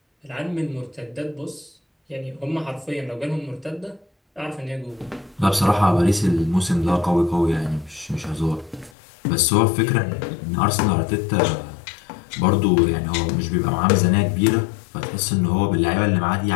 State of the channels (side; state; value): right; drops out; at 8.9 s